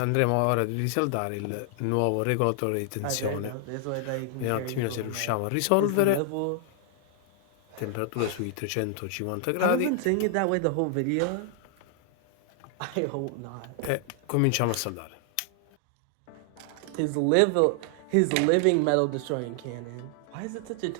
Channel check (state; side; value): different; both; correlation 0.00